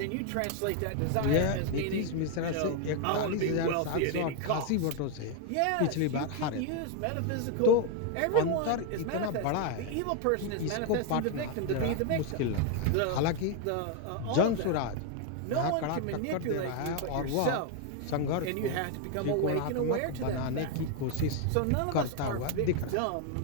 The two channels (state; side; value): different; both; correlation 0.01